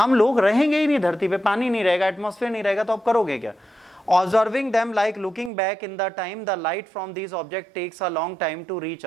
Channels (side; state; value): left; drops out; at 5.5 s